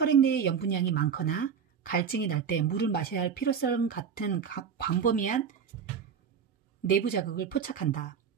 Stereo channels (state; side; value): quieter; left; 7.0 dB